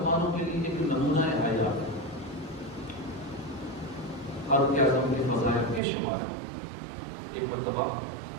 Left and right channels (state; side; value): drops out; left; at 5.8 s